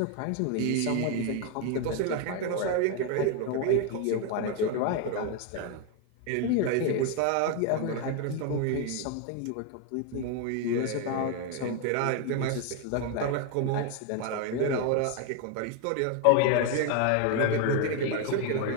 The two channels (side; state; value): both; different; correlation 0.01